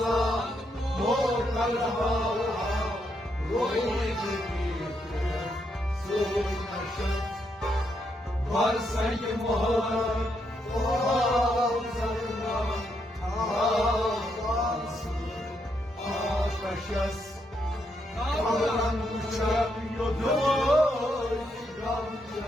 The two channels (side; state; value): both; normal; correlation 0.78